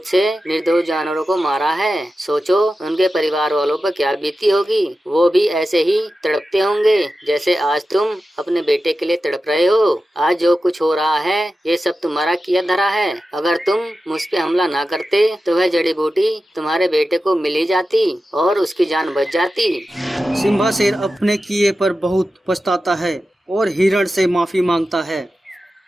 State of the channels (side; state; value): both; normal; correlation 0.92